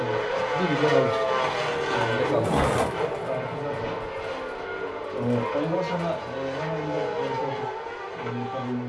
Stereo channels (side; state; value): both; identical; correlation 1.00